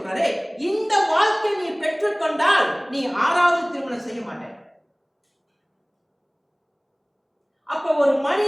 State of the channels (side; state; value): both; identical; correlation 1.00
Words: இந்த வாழ்க்கை நீ பெற்றுக்கொண்டால் நீ 6வது திருமணம் செய்ய மாட்ட. அப்ப ஒரு